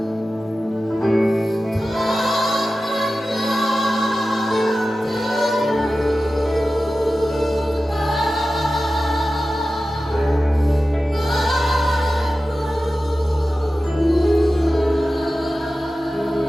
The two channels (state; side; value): normal; both; correlation 0.94